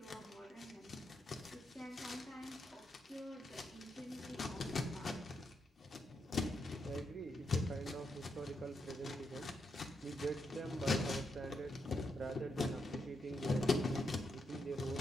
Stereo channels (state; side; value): normal; both; correlation 0.81